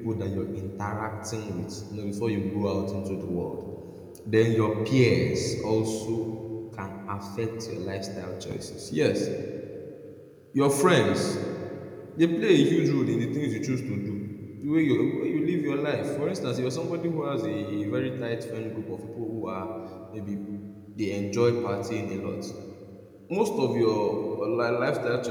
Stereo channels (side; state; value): both; identical; correlation 1.00